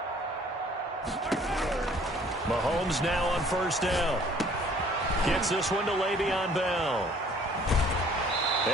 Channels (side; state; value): both; normal; correlation 0.56